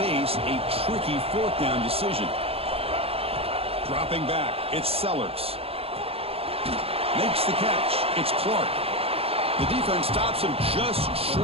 a tricky fourth down decision? Dropping back, it's Sellers. Makes the catch. It's Clark. The defense stops him just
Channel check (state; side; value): late; left; 0.28 ms